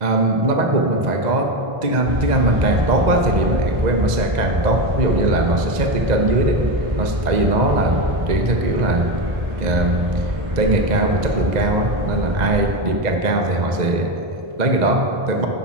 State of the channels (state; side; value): late; left; 1.9 ms